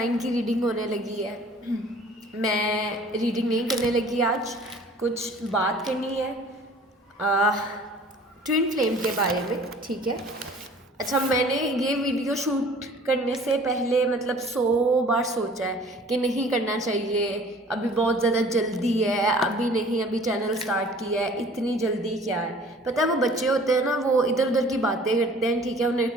की रीडिंग होने लगी है। मैं रीडिंग नहीं करने लगी आज, कुछ बात करनी है ट्विन फ्लेम के बारे में, ठीक है। अच्छा, मैंने ये वीडियो शूट करने से पहले मतलब 100 बार सोचा है कि नहीं करना चाहिए, अभी बहुत ज़्यादा जल्दी है, अभी नहीं, अभी चैनल स्टार्ट किया है, इतनी जल्दी क्या है। पता है वो बच्चे होते हैं ना, वो इधर उधर की बातें करते हैं, ठीक है, उन्हें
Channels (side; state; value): both; normal; correlation 0.50